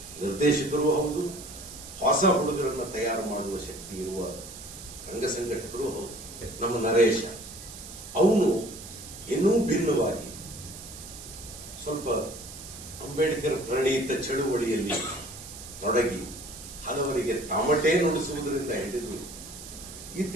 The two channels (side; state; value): right; noise; hiss, 13 dB below the sound